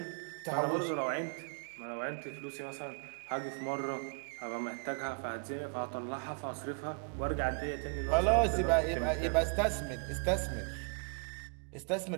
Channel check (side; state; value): left; quieter; 38.3 dB